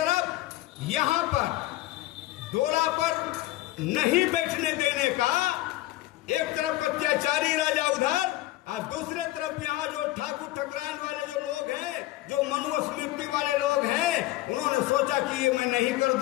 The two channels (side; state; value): right; quieter; 17.0 dB